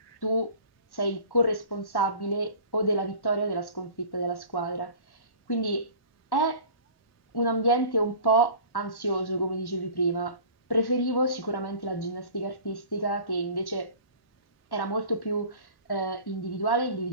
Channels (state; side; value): late; right; 1.1 ms